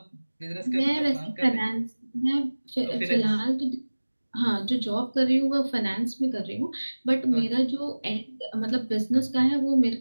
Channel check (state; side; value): inverted; both; correlation -1.00